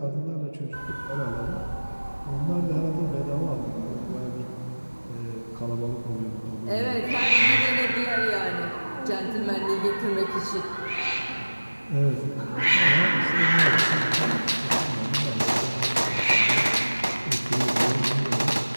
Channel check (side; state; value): both; inverted; correlation -1.00